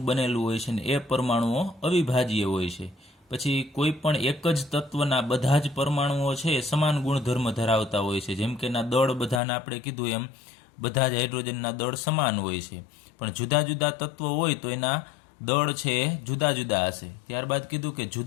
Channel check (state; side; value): drops out; right; at 9.4 s